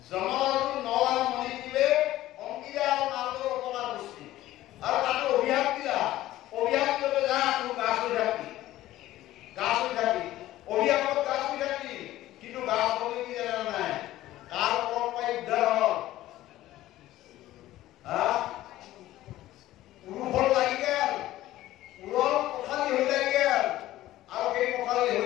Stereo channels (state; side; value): quieter; right; 15.1 dB